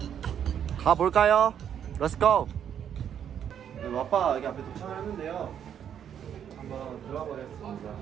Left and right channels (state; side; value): quieter; left; 9.0 dB